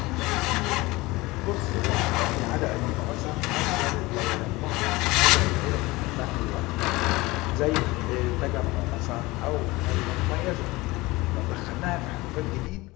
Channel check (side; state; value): right; quieter; 21.4 dB